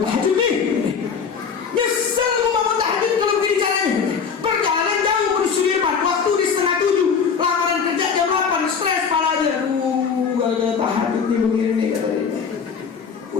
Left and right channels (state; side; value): quieter; right; 6.2 dB